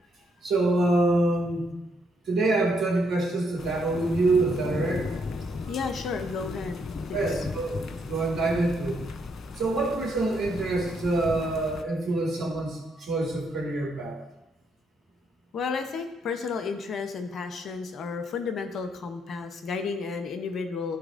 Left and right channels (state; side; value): normal; both; correlation 0.74